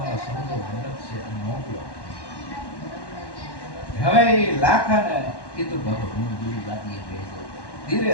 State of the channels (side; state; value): right; late; 1.1 ms